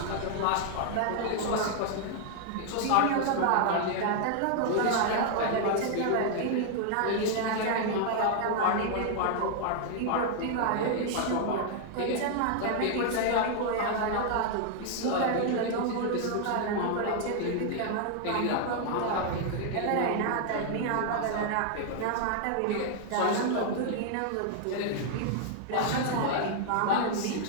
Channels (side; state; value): both; different; correlation 0.00